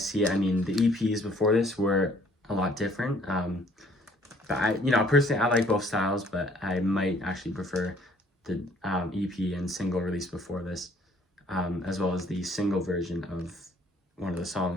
it, I mean, the EPs before this were a lot different. But personally, I like both styles, but I might actually prefer the EP and single released before this, as well as the single version of one of the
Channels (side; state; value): both; normal; correlation 0.60